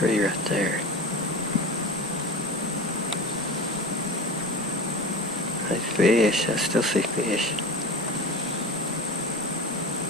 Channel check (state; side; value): normal; both; correlation 0.33